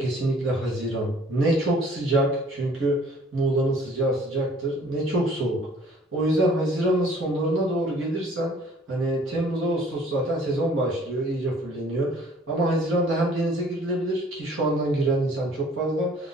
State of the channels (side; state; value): both; normal; correlation 0.55